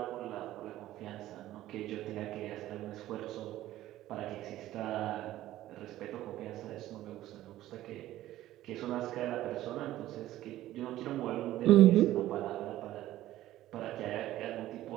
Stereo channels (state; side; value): quieter; left; 14.5 dB